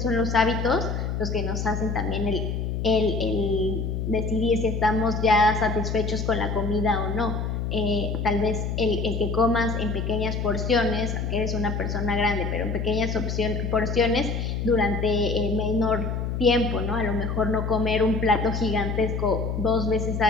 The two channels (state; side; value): noise; left; hum, 2 dB below the sound